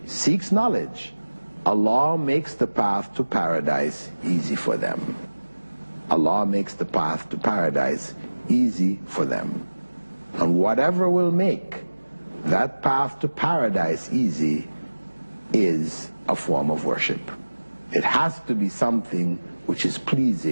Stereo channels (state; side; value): inverted; both; correlation -1.00